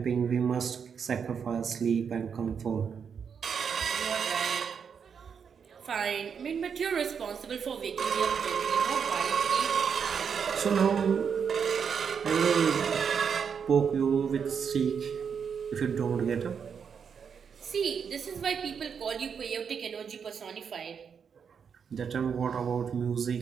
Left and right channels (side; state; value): left; quieter; 6.8 dB